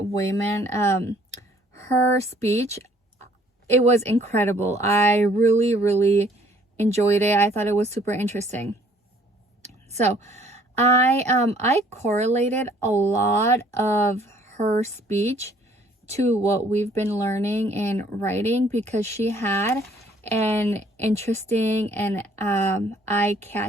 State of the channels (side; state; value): both; normal; correlation 0.60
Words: her speech, it was incredible. I really enjoyed it. I thought it was super interesting. So I correlated a lot of her speech to what we've been learning in writing, because she had an interesting and